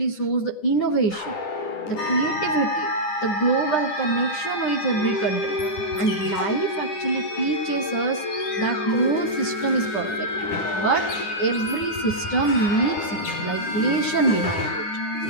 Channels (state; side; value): late; right; 10 ms